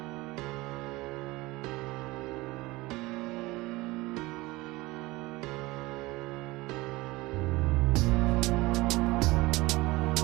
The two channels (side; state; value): left; quieter; 21.1 dB